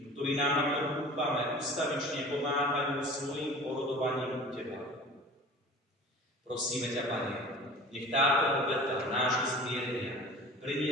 ktorí nám, ako dúfame, ustavične pomáhajú svojim porodovaním u Teba. Prosíme ťa, Pane, nech táto obeta nášho zmierenia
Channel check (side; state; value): both; normal; correlation 0.41